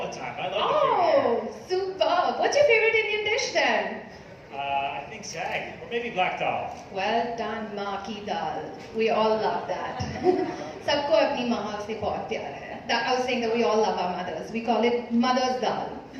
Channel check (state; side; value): identical; both; correlation 1.00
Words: the time. I love the food here. Superb. What's your favorite Indian dish then? I think sag, or maybe black dal. Well done, maa ki dal. We all love that. Sabko apni maa se bahut pyar hai. I was saying that we all love our mothers. We call it mother's dal.